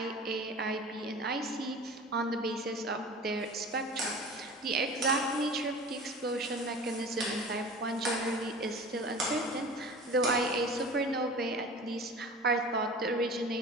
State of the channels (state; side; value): normal; both; correlation 0.38